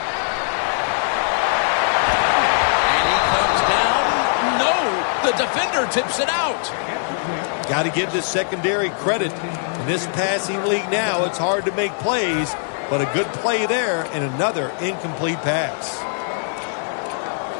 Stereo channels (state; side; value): silent; right; digital silence